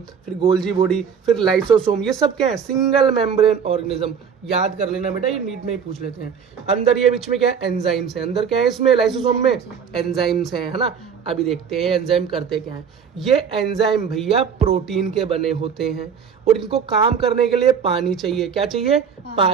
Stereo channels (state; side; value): quieter; left; 6.9 dB